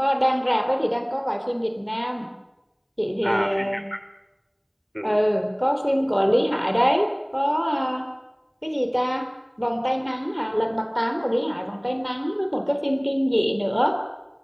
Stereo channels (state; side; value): identical; both; correlation 1.00